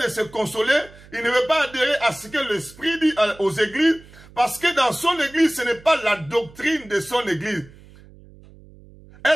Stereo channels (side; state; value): right; noise; hum, 23 dB below the sound